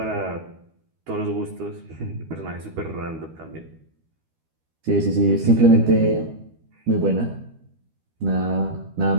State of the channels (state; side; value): late; left; 12 ms